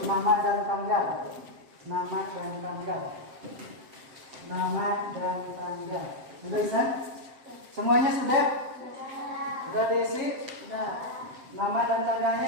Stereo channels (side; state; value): left; late; 7.6 ms